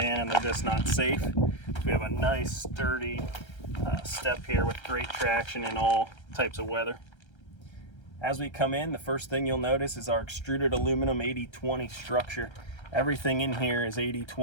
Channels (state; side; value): late; right; 1.3 ms